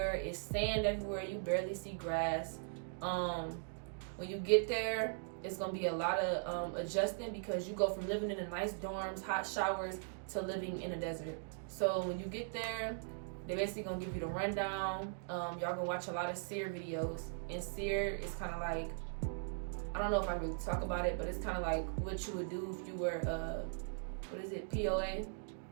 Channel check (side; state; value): left; silent; digital silence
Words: It's sand everywhere. You barely see grass. When you get there, it's going to be a lot of adjusting because you go from living in the nice dorms, hot showers, to living in a desert. So when you get there, they're basically going to give you the rundown. Y'all going to watch a lot of SEER videos. And SEER is kind of like, I don't know if I really talk about it, but it's kind of like what you would do if you were, POA?